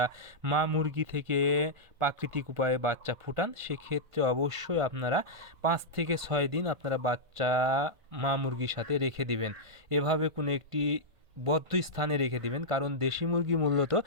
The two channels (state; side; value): late; left; 1.5 ms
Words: মা মুরগি থেকে প্রাকৃতিক উপায়ে বাচ্চা ফুটান, সেক্ষেত্রে অবশ্যই আপনারা 5 থেকে 6 দিন আপনারা বাচ্চা মা মুরগির সাথে রেখে দিবেন। এভাবে কোনো একটি বদ্ধ স্থানে রেখে দিবেন, কারণ দেশি মুরগি মূলত